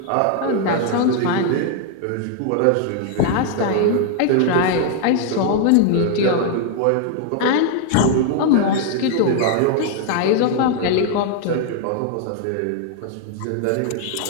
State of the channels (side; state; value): both; different; correlation 0.00